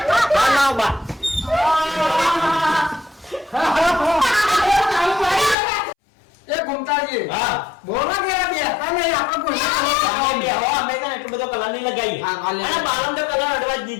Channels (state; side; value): drops out; right; at 5.6 s